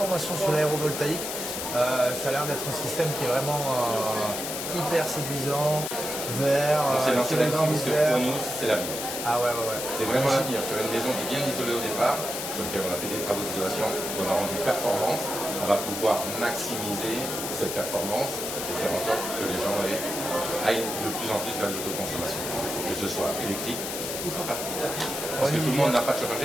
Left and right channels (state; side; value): noise; left; hiss, 5 dB below the sound